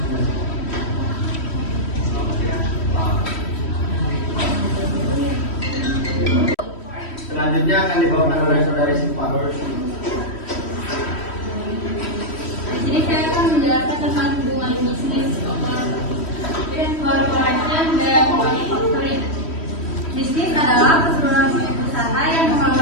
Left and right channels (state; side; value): late; right; 3.1 ms